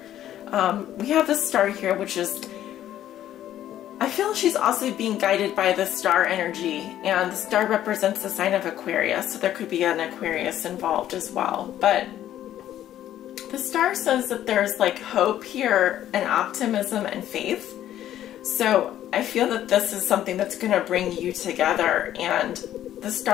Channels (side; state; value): right; quieter; 12.0 dB